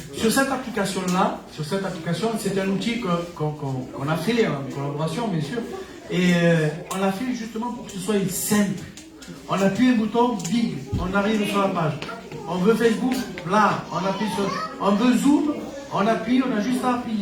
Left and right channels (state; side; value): identical; both; correlation 1.00